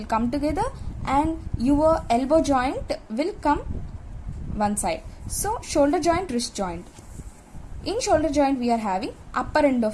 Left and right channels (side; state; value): both; identical; correlation 1.00